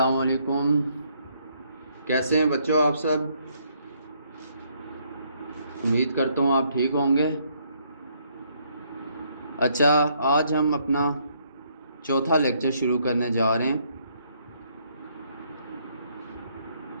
वालेकुम। कैसे हैं बच्चों आप सब? उम्मीद करता हूँ आप ठीक होंगे। अच्छा, आज हम अपना चौथा लेक्चर शुरू करने जा रहे हैं।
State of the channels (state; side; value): inverted; both; correlation -0.69